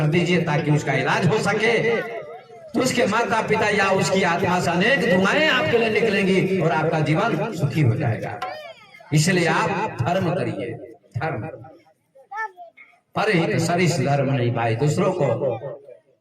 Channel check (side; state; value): both; identical; correlation 1.00